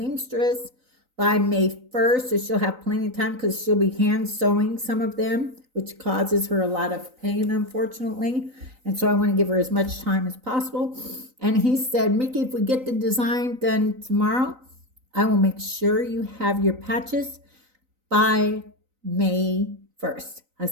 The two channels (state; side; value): late; left; 3.9 ms